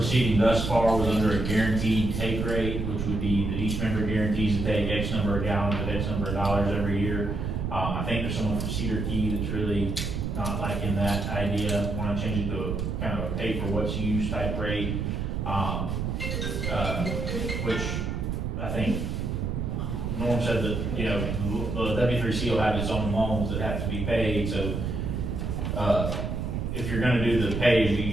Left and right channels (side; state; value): right; noise; rumble, 2 dB below the sound